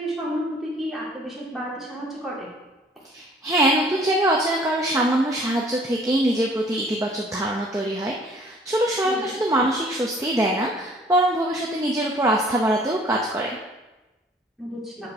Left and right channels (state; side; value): normal; both; correlation 0.55